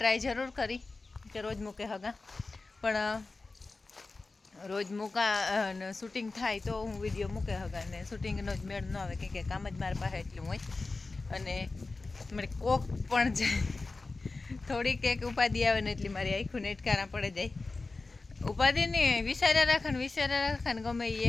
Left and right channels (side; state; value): right; quieter; 3.6 dB